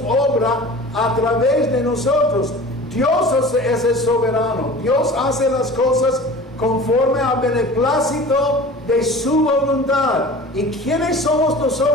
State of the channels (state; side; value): normal; both; correlation 0.40